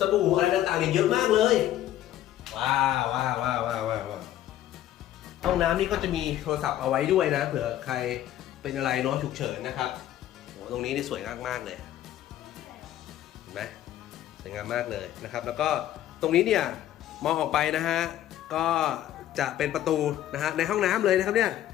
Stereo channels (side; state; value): right; quieter; 12.5 dB